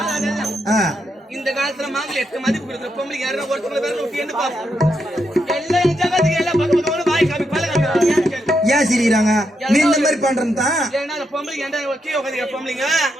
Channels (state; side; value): normal; both; correlation 0.82